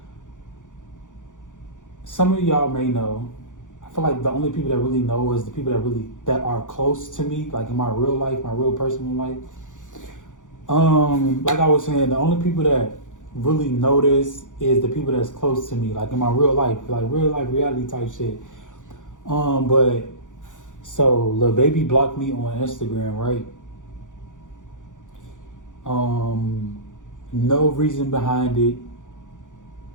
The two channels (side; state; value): right; late; 0.87 ms